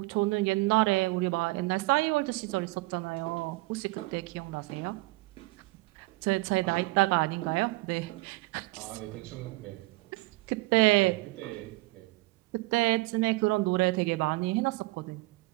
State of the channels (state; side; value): quieter; left; 22.9 dB